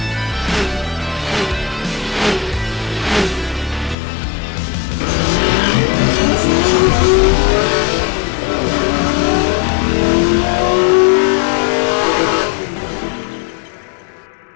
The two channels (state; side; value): drops out; right; at 4.0 s